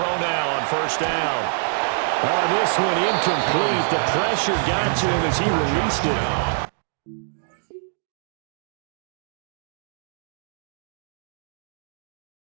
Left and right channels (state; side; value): silent; left; digital silence